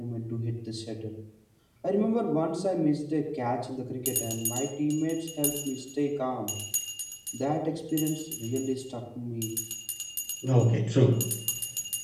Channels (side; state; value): both; identical; correlation 1.00